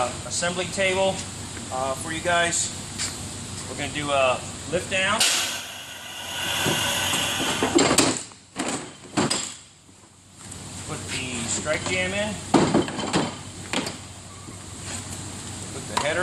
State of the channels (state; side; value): identical; both; correlation 1.00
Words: assembly table for you guys. We're going to do a lift down. Put the strike jam in. Put the